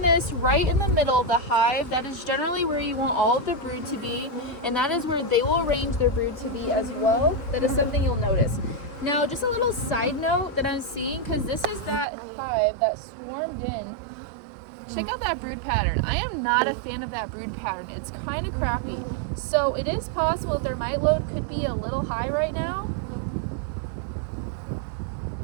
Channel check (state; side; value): drops out; left; at 12.1 s